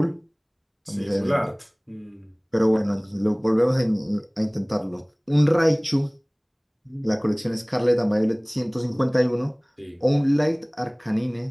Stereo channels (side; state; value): both; identical; correlation 1.00